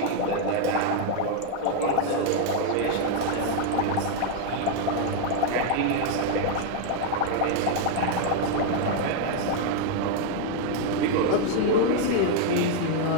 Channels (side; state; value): both; different; correlation 0.00